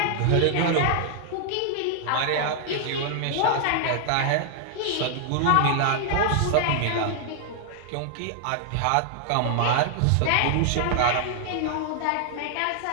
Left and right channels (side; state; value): both; different; correlation 0.00